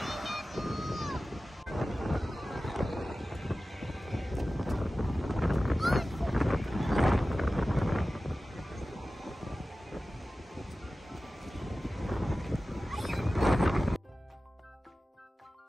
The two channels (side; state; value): both; normal; correlation 0.95